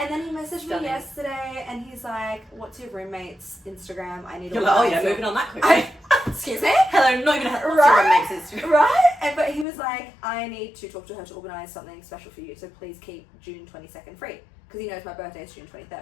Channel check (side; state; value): right; drops out; at 9.7 s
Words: then he messaged Stunning. me yesterday and he's like, what's your roommate's Instagram? I need to You're like, oh organize yeah, your-" moving on that quickly. Excuse me? Hello, not even her Right? makes it. Right? But he was like, I need to talk to her to organise something special for you, so please keep June 22nd free. Because he knows my birthday is June